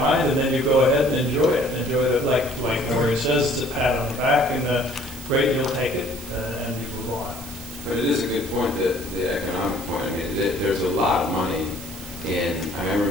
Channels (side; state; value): right; noise; hiss, 14 dB below the sound